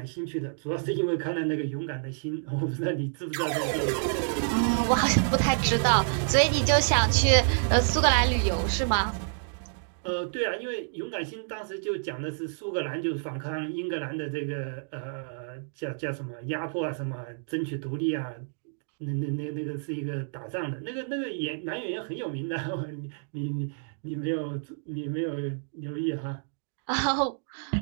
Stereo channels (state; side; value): silent; left; digital silence